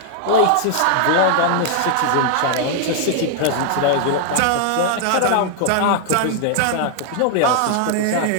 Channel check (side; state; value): both; different; correlation 0.00